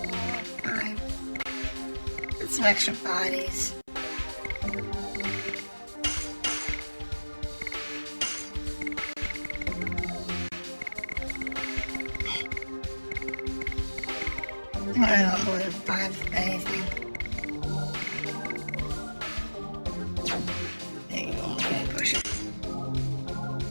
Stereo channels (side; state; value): both; inverted; correlation -1.00